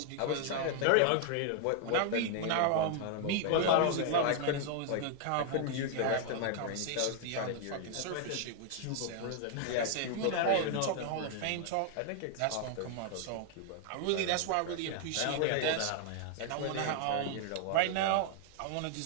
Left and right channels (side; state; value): both; different; correlation 0.00